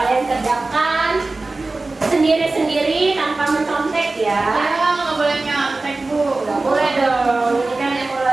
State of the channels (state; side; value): quieter; left; 3.3 dB